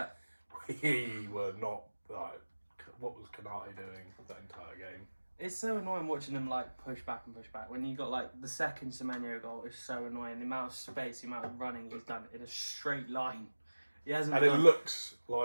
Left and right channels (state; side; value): inverted; both; correlation -1.00